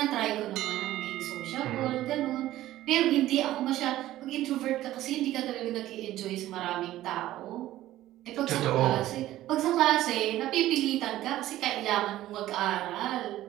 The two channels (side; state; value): left; quieter; 14.6 dB